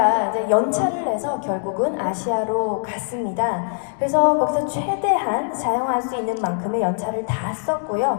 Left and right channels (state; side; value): silent; right; digital silence